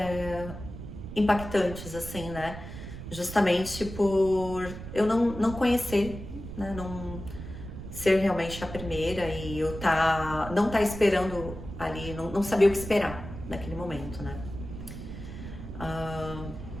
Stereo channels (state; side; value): noise; right; rumble, 10 dB below the sound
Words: impactantes, assim, né? Justamente por eu não conhecer, né? Não ser realmente a primeira e eu não tá esperando ali, não sabia o que esperar naquele momento, né?